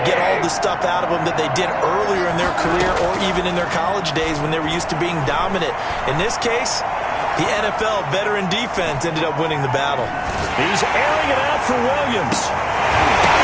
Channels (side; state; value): both; identical; correlation 1.00